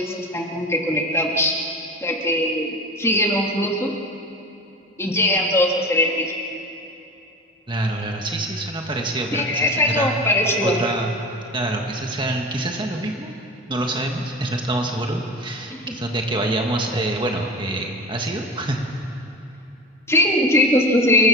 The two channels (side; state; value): both; normal; correlation 0.31